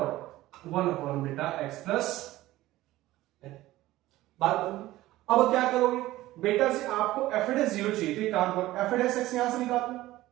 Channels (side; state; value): left; quieter; 16.5 dB